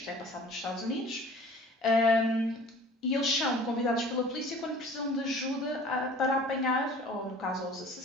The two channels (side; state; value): both; normal; correlation 0.47